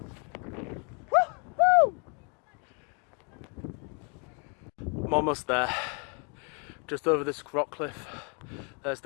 Woo-hoo! I'm almost there. Just over this rock cliff, there's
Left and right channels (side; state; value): right; quieter; 36.6 dB